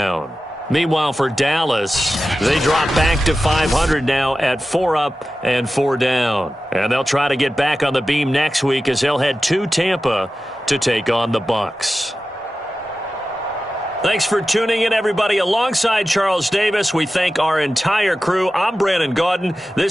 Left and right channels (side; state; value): both; normal; correlation 0.94